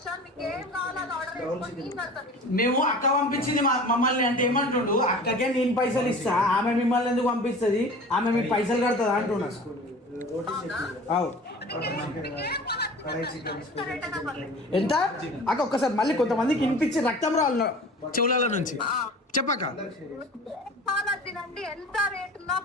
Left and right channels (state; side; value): normal; both; correlation 0.40